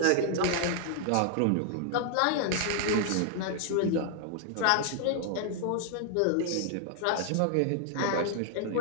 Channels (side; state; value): both; different; correlation 0.00